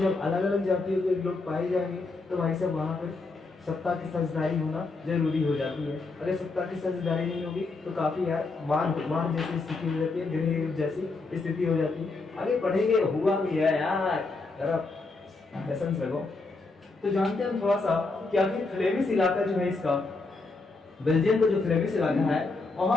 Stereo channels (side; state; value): right; quieter; 3.7 dB